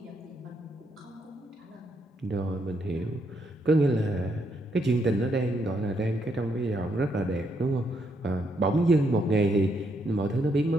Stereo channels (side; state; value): both; normal; correlation 0.76